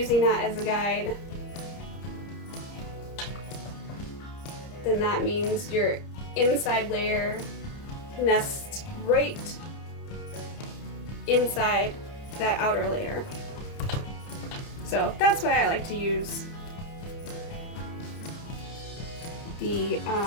that as a guide, then that means your inside layer nests right inside that outer layer. So that's why I like to use the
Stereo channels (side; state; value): right; late; 30 ms